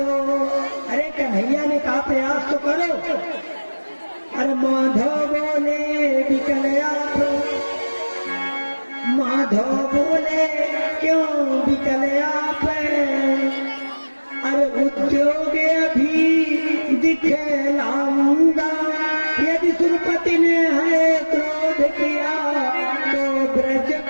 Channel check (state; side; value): inverted; both; correlation -1.00